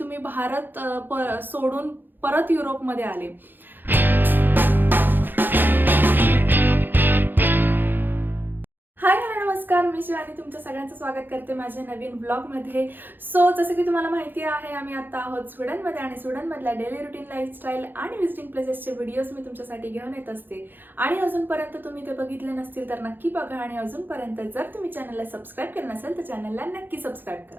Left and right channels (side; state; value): left; late; 0.093 ms